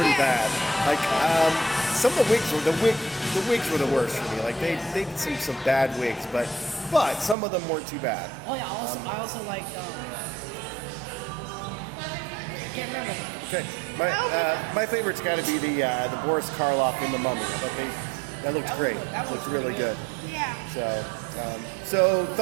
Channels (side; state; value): left; drops out; at 7.4 s